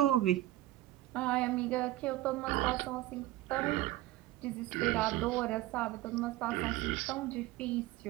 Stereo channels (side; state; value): left; quieter; 16.3 dB